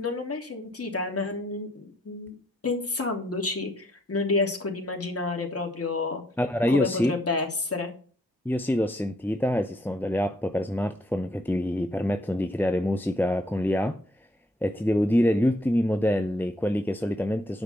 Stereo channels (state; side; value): normal; both; correlation 0.70